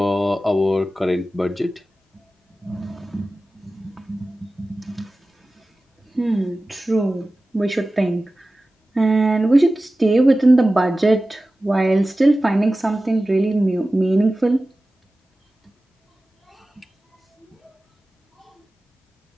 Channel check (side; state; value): both; normal; correlation 0.96